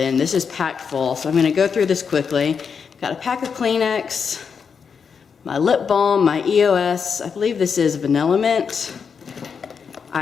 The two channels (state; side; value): quieter; right; 6.2 dB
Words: This is packed full, so I'm gonna go through this quickly. Got a pack of Kleenex, my lip balm, my EOS, I believe this is Vanilla Mint.